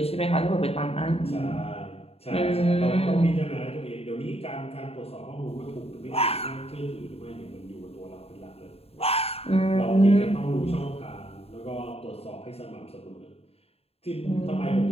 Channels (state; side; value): late; right; 0.29 ms